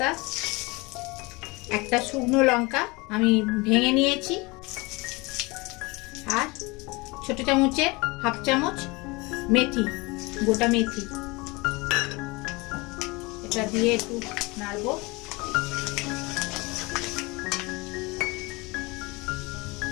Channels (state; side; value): quieter; right; 24.9 dB